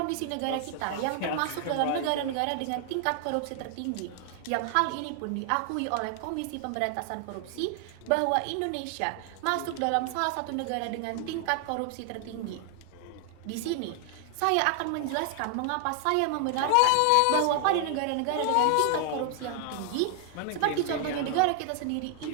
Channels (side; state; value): both; different; correlation 0.00